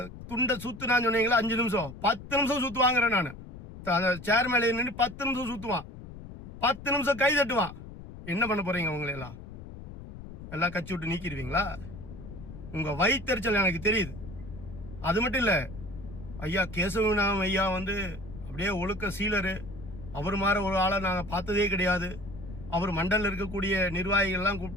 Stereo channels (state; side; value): noise; left; rumble, 13 dB below the sound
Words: துண்டை சுத்துனான்னு சொன்னீங்களா 5 நிமிஷம், 10 நிமிஷம் சுத்துவாங்கிறேன் நான். சேர்மேல நின்று 10 நிமிஷம் சுத்துவான், 10 நிமிஷம் கை தட்டுவான். என்ன பண்ண போறீங்க? உங்களை எல்லாம் கட்சி விட்டு நீக்கிடுவீங்களா? உங்க வயிற்றுச்சல் எனக்கு தெரியுது. அது மட்டும் இல்ல, ஐயா கேசவநாம ஐயா அப்படியே ஒழுக்க சீலரு. அவர் மாதிரி ஒரு ஆளை நாங்க பார்த்ததே கிடையாது. அவர் மண்டல இருக்கக்கூடிய நிர்வாகிகள் எல்லாம்